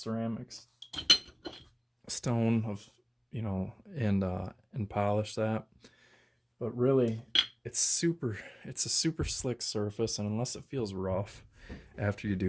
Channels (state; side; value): identical; both; correlation 1.00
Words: stone of, you know, and polish that. But really, it's a super slick surface, and unless it feels rough after you